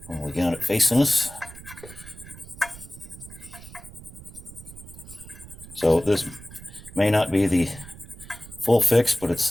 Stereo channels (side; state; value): right; noise; rumble, 17 dB below the sound